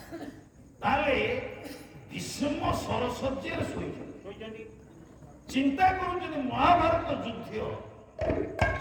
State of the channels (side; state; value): both; identical; correlation 1.00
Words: ତାହେଲେ ଭୀଷ୍ମ ସରସ୍ୱତୀରେ ଶୋଇଛନ୍ତି ଶୋଇଛନ୍ତି ଚିନ୍ତା କରୁଛନ୍ତି ମହାଭାରତ ଯୁଦ୍ଧ